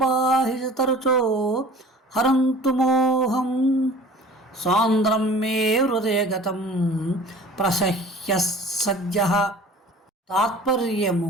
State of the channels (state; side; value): normal; both; correlation 0.44